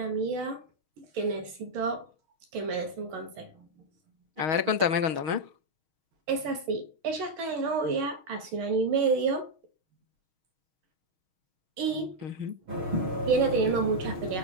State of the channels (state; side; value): late; left; 6.4 ms